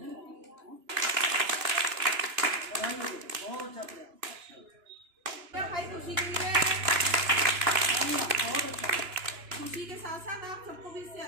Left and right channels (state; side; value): late; left; 2.9 ms